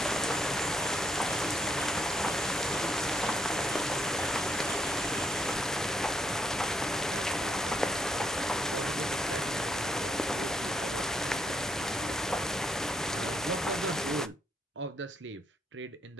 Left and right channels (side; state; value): both; normal; correlation 0.75